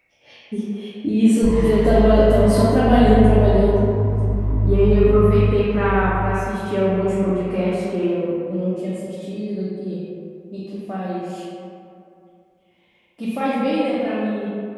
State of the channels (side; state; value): both; identical; correlation 1.00